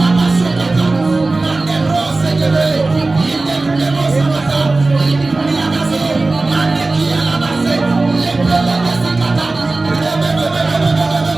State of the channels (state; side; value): quieter; left; 3.3 dB